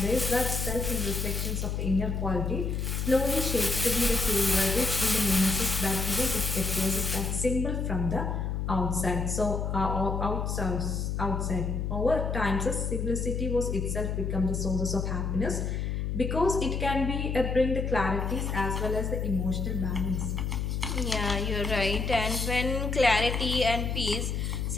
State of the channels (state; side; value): noise; left; hum, 1 dB below the sound